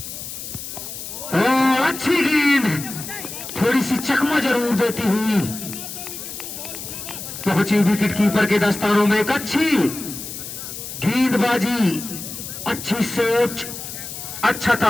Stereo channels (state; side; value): noise; left; hiss, 9 dB below the sound